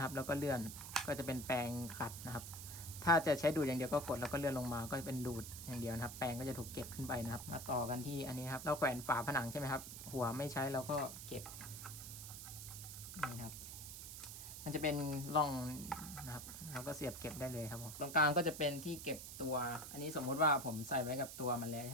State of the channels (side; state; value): right; noise; hiss, 10 dB below the sound